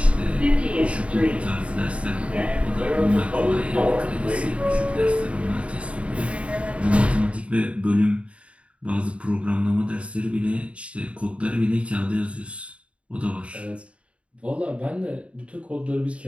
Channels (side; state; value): left; late; 0.063 ms